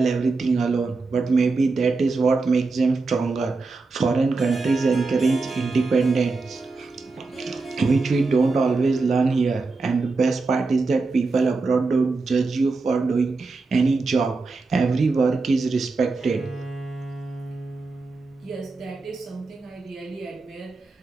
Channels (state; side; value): quieter; left; 3.9 dB